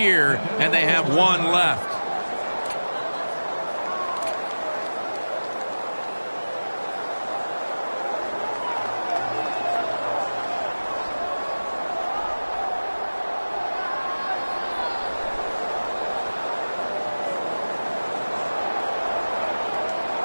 and they have one left.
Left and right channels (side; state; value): both; inverted; correlation -1.00